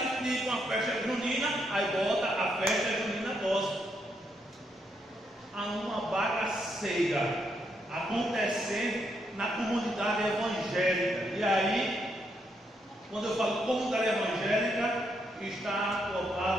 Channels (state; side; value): normal; both; correlation 0.78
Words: de ir para uma festa junina, aí bota a festa junina gospel. Há uma bagaceira acontecendo na comunidade evangélica. E aí, quando eu falo comunidade evangélica, está